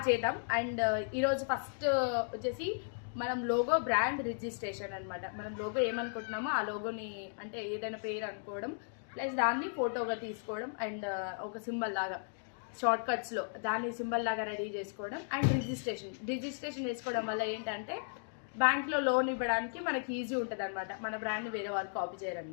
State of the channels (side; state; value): right; silent; digital silence